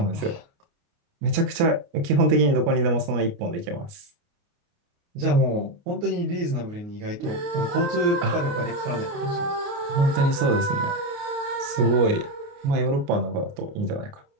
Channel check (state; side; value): late; left; 29 ms